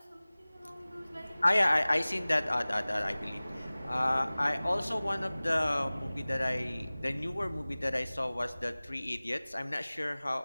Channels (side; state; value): both; inverted; correlation -0.99